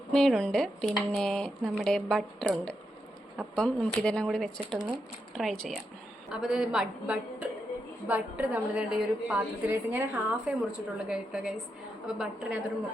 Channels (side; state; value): both; normal; correlation 0.84